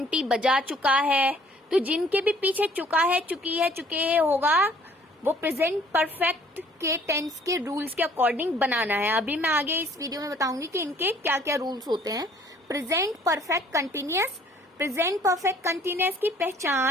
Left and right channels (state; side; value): normal; both; correlation 0.57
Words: बजा चुका है। तो जिनके भी पीछे चुका है, चुकी है, चुके हैं होगा, वो प्रेजेंट परफेक्ट के टेंस के रूल्स के अकॉर्डिंग बनाना है। अभी मैं आगे इस वीडियो में बताऊंगी कि इनके क्या क्या रूल्स होते हैं। Present perfect continuous, present perfect continuous की